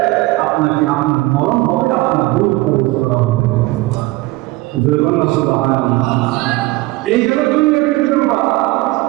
আপনাকে আপনার মরণ হবে, আপনার রূহ প্রবেশ করা হবে। সুবহানাল্লাহ। এই হলো দুনিয়ার ব্যাপার।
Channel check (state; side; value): quieter; left; 20.4 dB